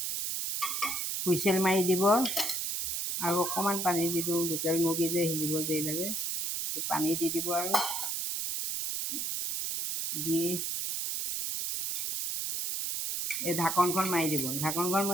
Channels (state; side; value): noise; right; hiss, 1 dB below the sound